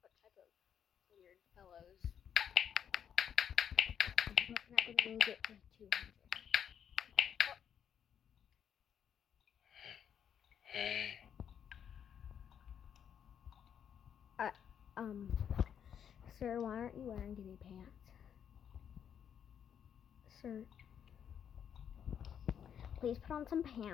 What type of weird fellows? I'm not going to get to 200. Sir, why aren't you wearing any pants? Sir, please put on some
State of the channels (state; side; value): quieter; right; 8.6 dB